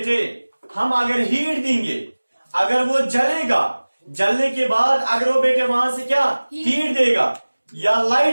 हम अगर हीट देंगे, अगर वो जलेगा, जलने के बाद अगर वो बेटे वहां से क्या हीट देगा या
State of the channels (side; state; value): both; inverted; correlation -1.00